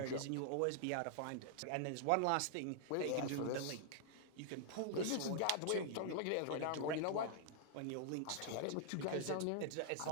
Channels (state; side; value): different; both; correlation -0.01